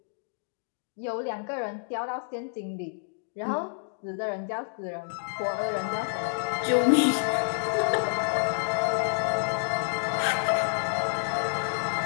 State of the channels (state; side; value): silent; right; digital silence